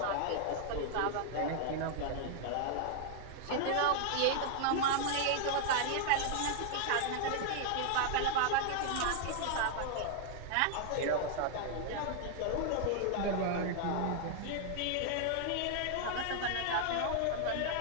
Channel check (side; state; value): both; different; correlation 0.00